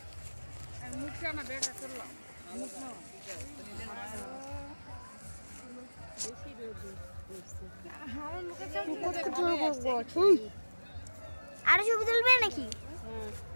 মুখটা না দেখা করলাম, আরো ছবি তুলবে নাকি?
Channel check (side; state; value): both; inverted; correlation -1.00